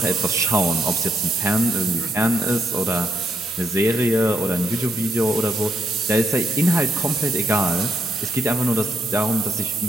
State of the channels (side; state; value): both; normal; correlation 0.77